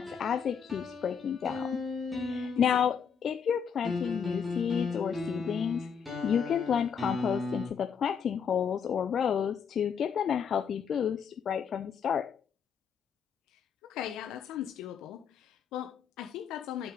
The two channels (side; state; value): right; quieter; 7.0 dB